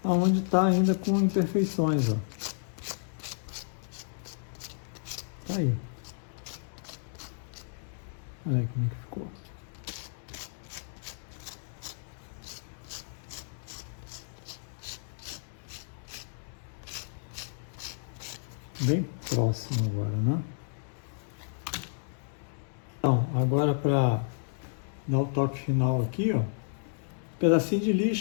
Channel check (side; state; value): right; silent; 57 dB below the other